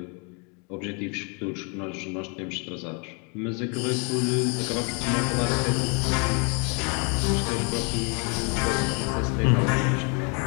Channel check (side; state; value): right; quieter; 35.3 dB